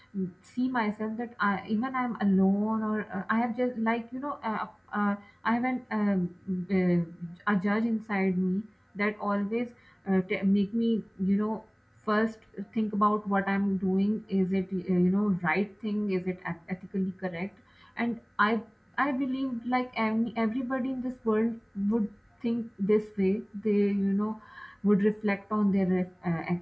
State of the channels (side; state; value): both; identical; correlation 1.00